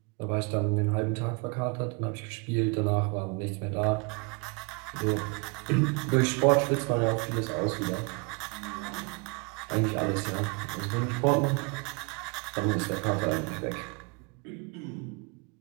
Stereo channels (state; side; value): quieter; left; 31.8 dB